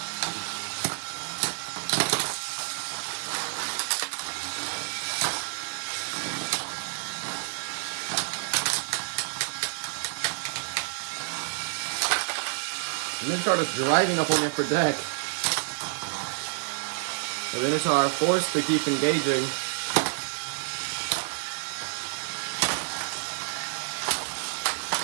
Minotaur is driving up on the upper deck. The Minotaur forced to keep engaging.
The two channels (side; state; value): left; silent; digital silence